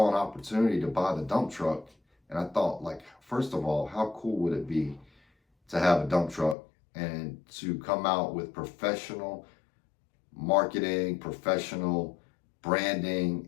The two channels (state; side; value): drops out; right; at 6.6 s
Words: an opportunity to buy the dump truck, and I thought, like, first of all, how cool would it be to have a dump truck and to come out with professional marketing, professional